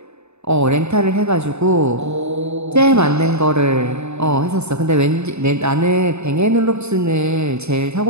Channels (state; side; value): late; left; 0.81 ms